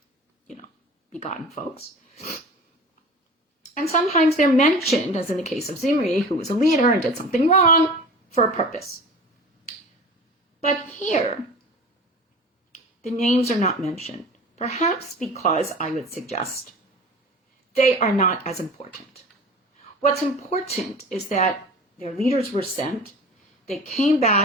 begotten folks. And sometimes they're mentioned, as in the case of Zimri, who was a leader and did something wrong, for a purpose. But here, the names are not mentioned, perhaps because, I would suggest, they are not as important. What's important is that their leaders were sent, they came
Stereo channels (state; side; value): normal; both; correlation 0.38